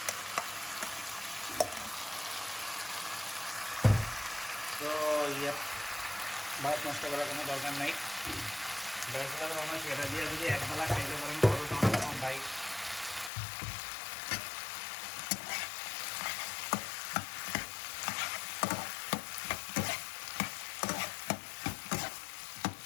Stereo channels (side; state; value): right; drops out; at 13.3 s